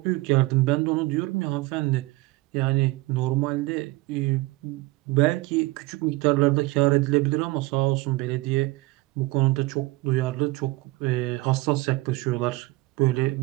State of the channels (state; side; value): quieter; left; 20.7 dB